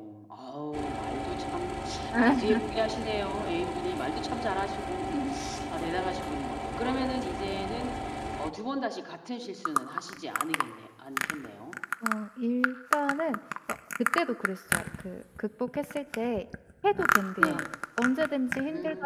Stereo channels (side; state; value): both; identical; correlation 1.00